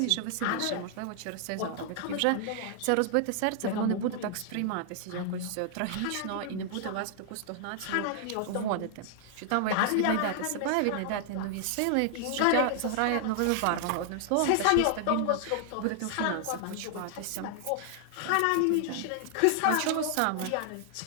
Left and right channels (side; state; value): both; different; correlation 0.00